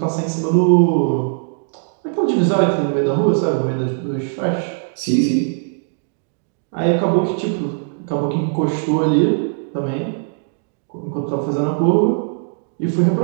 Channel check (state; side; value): silent; left; digital silence